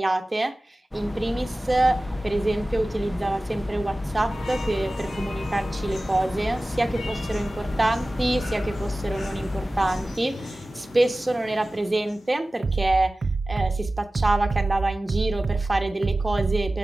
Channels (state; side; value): normal; both; correlation 0.96